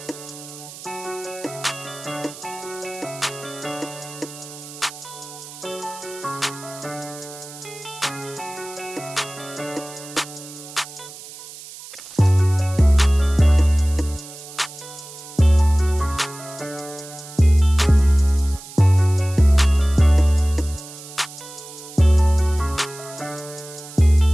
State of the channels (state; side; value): noise; right; hiss, 15 dB below the sound